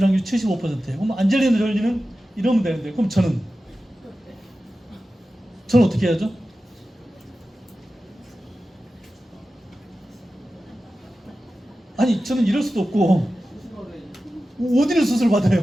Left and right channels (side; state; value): both; normal; correlation 0.94